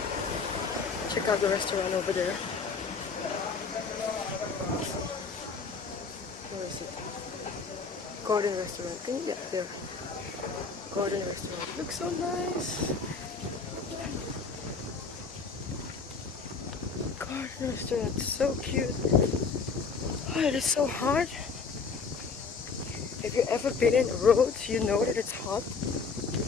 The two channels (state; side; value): quieter; right; 4.9 dB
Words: Check out the restaurant over there. Where is it? Garden restaurant. Can you get there? Garden restaurant. Looks so nice. Garden restaurant. So cute. Oh, it is so hot. If you've ever been in Rhodes, you know that it's hot.